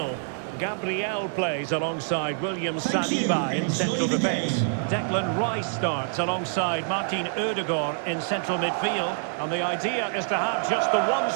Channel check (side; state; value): left; silent; 61 dB below the other